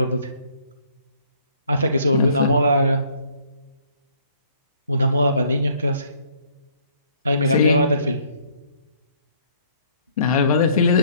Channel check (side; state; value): both; inverted; correlation -0.62